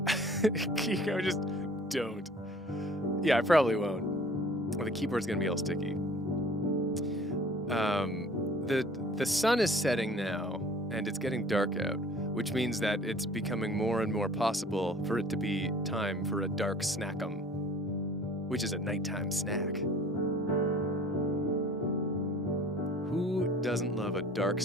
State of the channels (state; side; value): normal; both; correlation 0.49